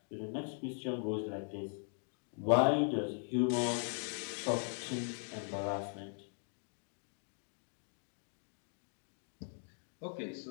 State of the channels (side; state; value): right; silent; 51 dB below the other